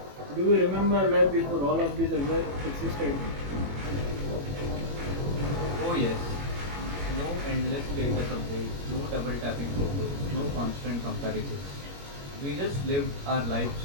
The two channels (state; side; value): late; left; 21 ms